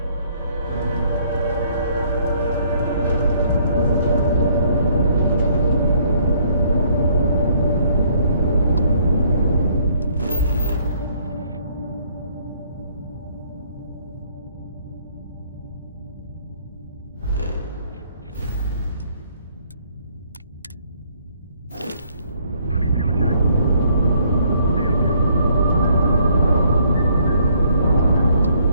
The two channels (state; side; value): inverted; both; correlation -0.64